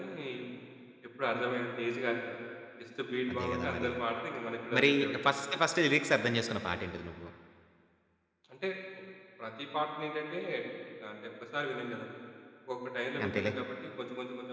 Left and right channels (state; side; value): identical; both; correlation 1.00